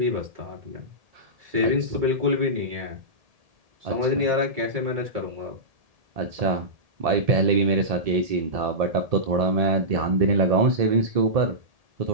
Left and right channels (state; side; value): late; left; 1.7 ms